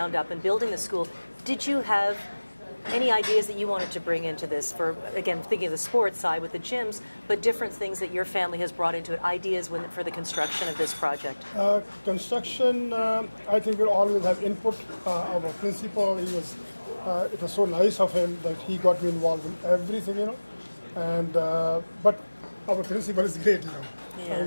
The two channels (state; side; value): inverted; both; correlation -1.00